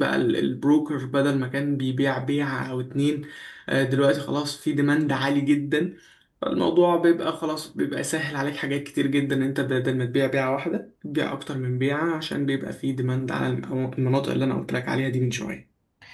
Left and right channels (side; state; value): both; identical; correlation 1.00